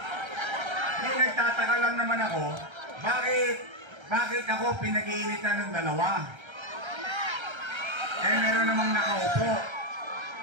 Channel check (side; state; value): left; late; 1.3 ms